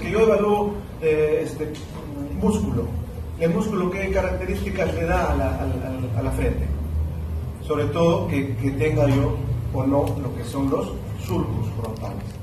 yo evalúo músculo, ¿el músculo qué características le da a la frente? Sobre todo que tenga yo o no lo que son los surcos frontales,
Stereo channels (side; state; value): both; identical; correlation 1.00